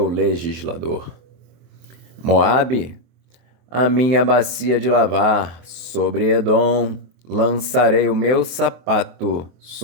legislador. Moabe, a minha bacia de lavar. Sobre Edom lançarei o meu sapato,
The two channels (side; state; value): left; late; 23 ms